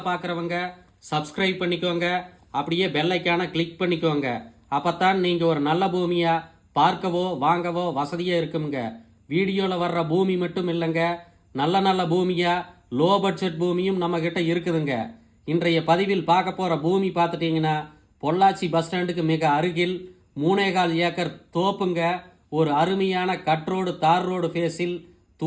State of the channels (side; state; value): both; identical; correlation 1.00